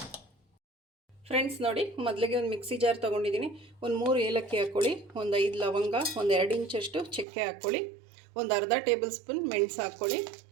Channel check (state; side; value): drops out; left; at 7.2 s